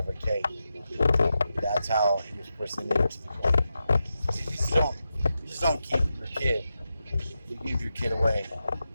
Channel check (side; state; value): both; inverted; correlation -0.89